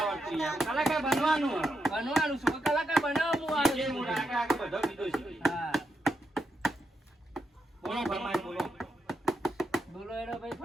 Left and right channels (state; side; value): normal; both; correlation 0.84